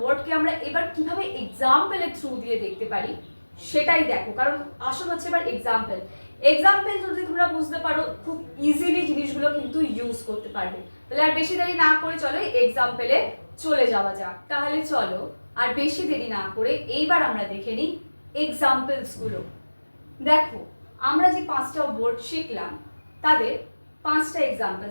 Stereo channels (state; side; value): inverted; both; correlation -1.00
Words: আমরা এবার কিভাবে এক্সাম্পলের থ্রু দিয়ে দেখতে পারি সেটাই দেখো, কারণ আসল হচ্ছে এবার এক্সাম্পল। এক্সাম্পল যদি তোমরা বুঝতে পারো, খুব ইজিলি জিনিসগুলো কিন্তু ইউজ করতে পারবে। তাহলে আর বেশি দেরি না করে চলো এক্সাম্পলে চলে যাওয়া যাক। তাহলে চলো আর বেশি দেরি না করে এইবার আমরা দেখে নিই এক্সাম্পলসগুলো। দেখো, আমরা যে 5টা ওয়ার্ড শিখলাম তাদের 5টা